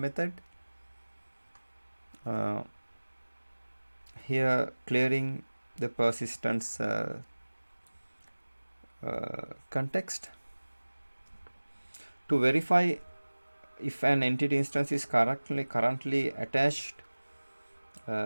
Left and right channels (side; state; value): both; inverted; correlation -1.00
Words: Here clearing the persistence context. To verify if an entity instance is currently attached